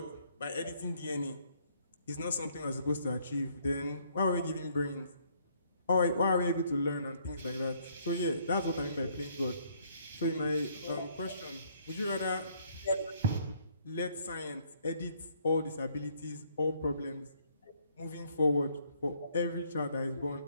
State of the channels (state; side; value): inverted; both; correlation -0.66